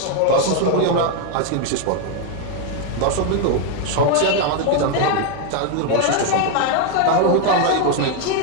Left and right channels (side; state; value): both; different; correlation 0.01